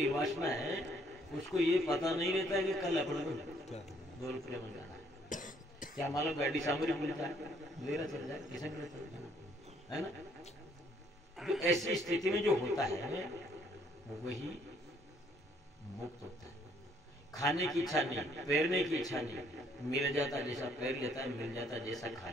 है उसको ये पता नहीं रहता है कि कल अपने को 2 रुपये में जाना है। क्या मालूम गाड़ी सामने मिलता है, मेरा चल जाए, किसे मिले चल जाए, है ना? तो ऐसी स्थिति में जो होता है वही मुक्त होता है। खाने की इच्छा नहीं, पैरने की इच्छा नहीं, मिल जाता जैसा पैर लेता है, मिल जाता जैसा खा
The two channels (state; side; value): normal; both; correlation 0.65